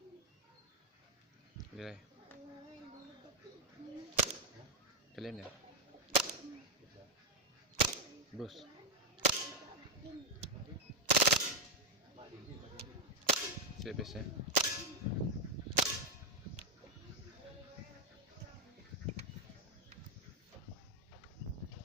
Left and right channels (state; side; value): normal; both; correlation 0.04